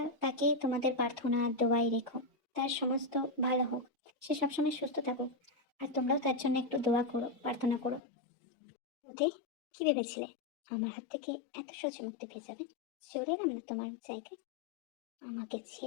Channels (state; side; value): drops out; right; at 8.0 s